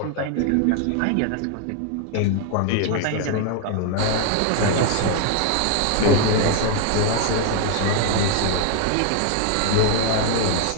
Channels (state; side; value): different; both; correlation 0.00